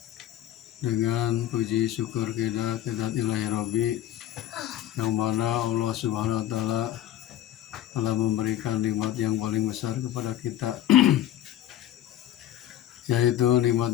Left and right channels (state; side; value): quieter; right; 12.6 dB